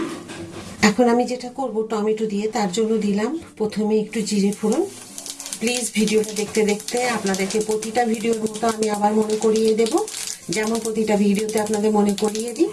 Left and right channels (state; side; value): identical; both; correlation 1.00